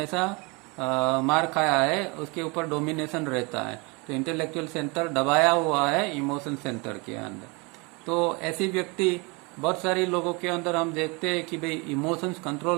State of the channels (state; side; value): quieter; left; 28.7 dB